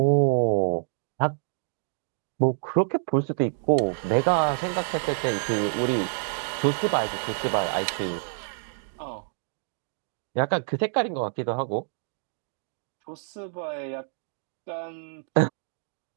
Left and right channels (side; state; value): left; silent; digital silence